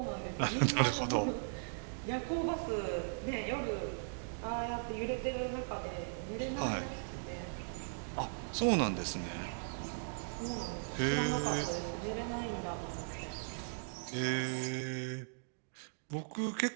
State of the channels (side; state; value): left; silent; digital silence